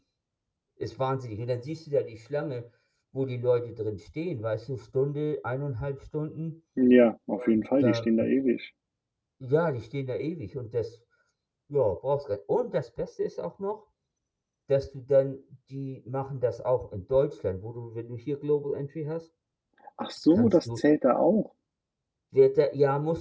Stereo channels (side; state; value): both; identical; correlation 1.00